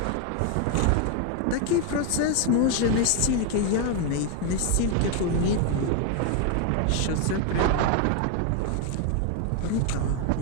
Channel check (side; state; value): both; different; correlation 0.01